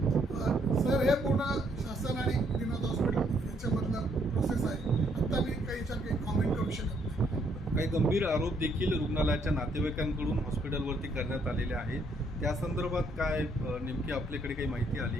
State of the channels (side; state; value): both; normal; correlation 0.70